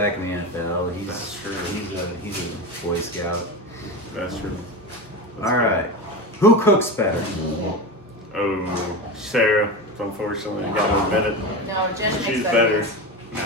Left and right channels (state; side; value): normal; both; correlation 0.22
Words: in the NFL. That's true. He's a Boy Scout. That's true. All right. Who cooks better? Oh, Sarah. Unfortunately, I gotta admit it. No, Jesh makes She's better. better.